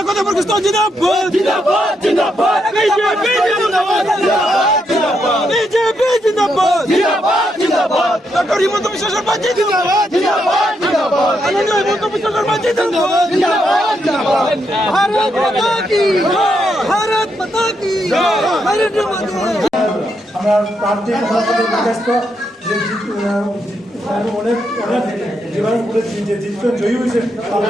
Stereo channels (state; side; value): normal; both; correlation 0.80